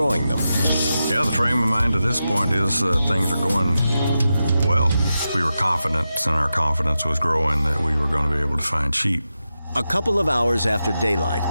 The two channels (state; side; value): inverted; both; correlation -0.90